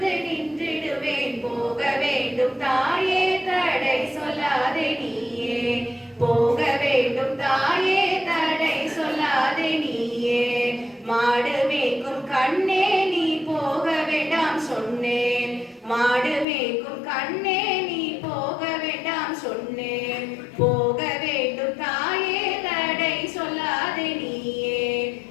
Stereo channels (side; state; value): right; drops out; at 16.4 s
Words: நின்றிடுவேன். போக வேண்டும் தாயே தடை சொல்லாதே நீயே, போக வேண்டும் தாயே தடை சொல்லாதே நீயே. மாடு மேய்க்கும் கண்ணே நீ போக வேண்டாம் சொன்னேன், மாடு மேய்க்கும் கண்ணே நீ போக வேண்டாம் சொன்னேன். போக வேண்டும் தாயே தடை சொல்லாதே நீயே,